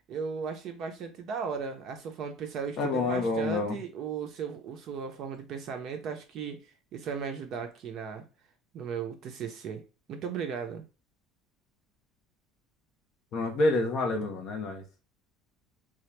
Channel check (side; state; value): both; normal; correlation 0.51